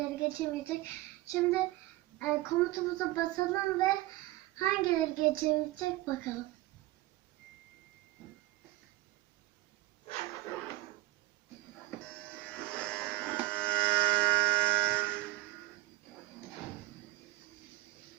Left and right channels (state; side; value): quieter; left; 18.3 dB